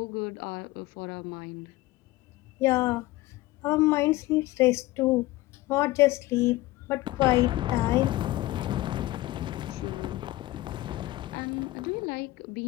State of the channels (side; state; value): right; quieter; 17.8 dB